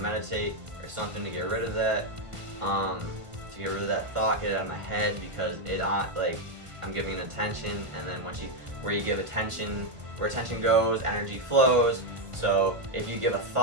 or something to get rid of that, to get rid of that thought, get it out of my head, because like, I'm giving it attention, and then where you give attention, where attention goes, energy flows. So if you give a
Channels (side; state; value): left; late; 1.5 ms